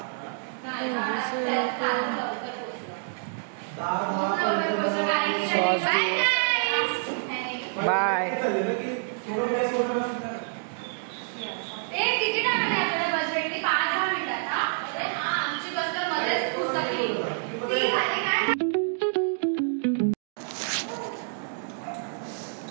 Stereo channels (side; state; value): left; silent; digital silence